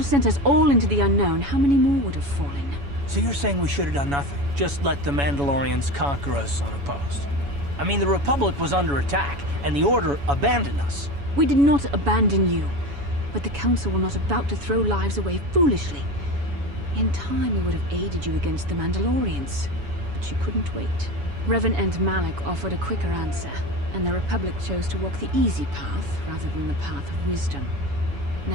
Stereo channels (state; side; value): late; left; 7.1 ms